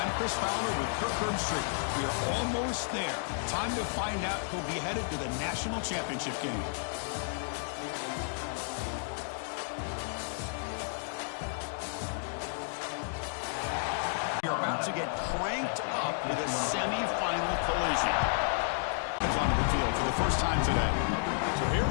I'm Chris Fowler with Kirk Herbstreit. We are almost there. Time to find out who'll be headed to the national championship game. We're about to get cranked up with a semi-final collision. Comes onto the field for the first time today. So here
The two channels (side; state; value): right; silent; digital silence